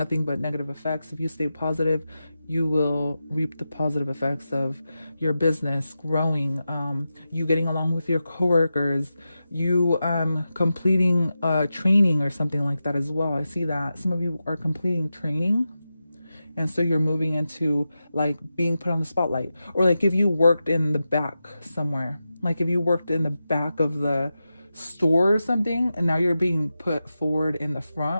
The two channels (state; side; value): inverted; both; correlation -0.91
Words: but negative effects. If you stay positive, you will reap the positive effects of your business growing, you getting along with your coworkers, you completing training or something like that as well. I see that some of you are completing training. And so you're moving into like being put on the spotlight. Or like if you worked in the back somewhere, like if you worked in the back of the store or something, and now you're being put forward in the